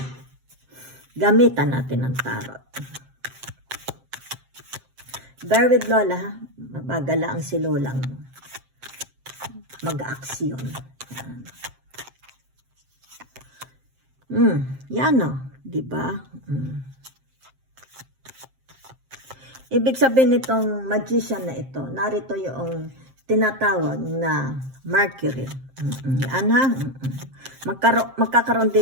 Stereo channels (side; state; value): left; late; 7.6 ms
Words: Gamitan natin ng tarot. Bear with Lola, ha? Mabagala ang si Lolang mag-aksyon. Yan o, diba? Ibig sabihin nitong magician na ito, narito yung tinatawag na Mercury. Yan ha. Magkakaroon